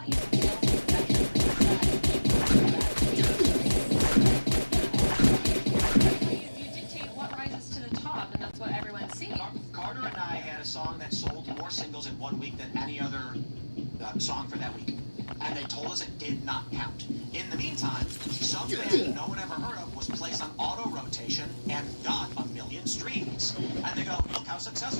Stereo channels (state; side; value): inverted; both; correlation -1.00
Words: using sales as a metric for you dictate what rises to the top, and that's what everyone sees. Carter and I had a song that sold more singles in 1 week than any other song for that week. And they told us it did not count. In the meantime, some band no one ever heard of was placed on auto rotation and got 1 million streams. And they go, look how